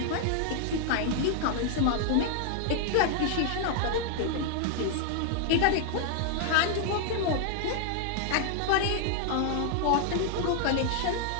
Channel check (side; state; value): both; different; correlation 0.00